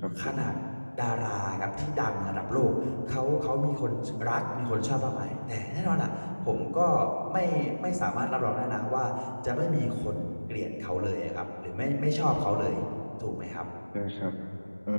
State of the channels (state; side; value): inverted; both; correlation -1.00